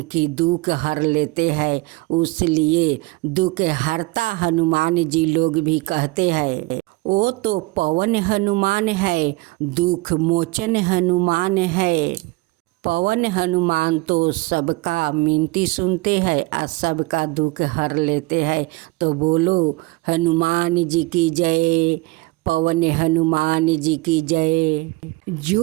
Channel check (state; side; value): quieter; left; 23.1 dB